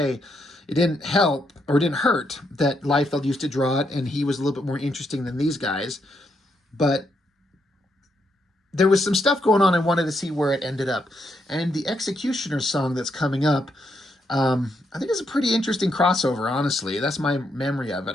It didn't help, or it didn't hurt, that Liefeld used to draw it, and he was a little bit more interesting than these guys. But there was some stuff going on. I wanted to see where it ended up. And the Executioner song that's coming up, I think it's a pretty interesting crossover, honestly. That's my memory of it.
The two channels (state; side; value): normal; both; correlation 0.78